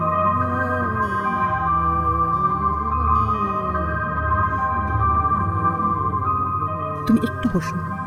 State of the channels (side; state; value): both; identical; correlation 1.00